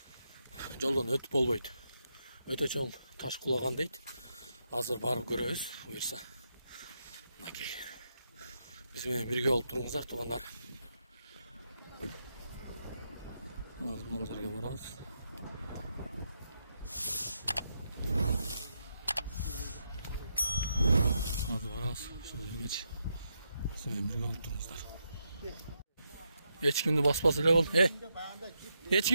Жолдон өтүп болбойт. Өтө чоң таш кулаган дейт. Азыр барып көрөбүз, буюрса. Мынакей. Биз менен бирге болуп туруңуздар, туугандар. Азыр бул жерге барабыз. Азыр барабыз, ушул жергечи. Siz birge olup durunuzlar. Hiç kimde basmaz öyle ol. Hiç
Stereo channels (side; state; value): both; inverted; correlation -0.83